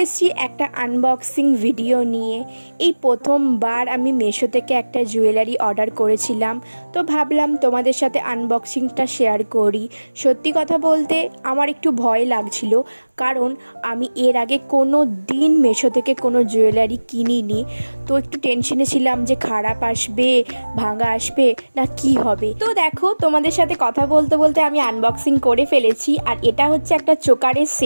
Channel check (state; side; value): inverted; both; correlation -1.00